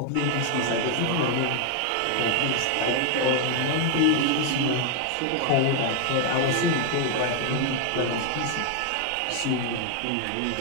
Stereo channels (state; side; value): different; both; correlation 0.00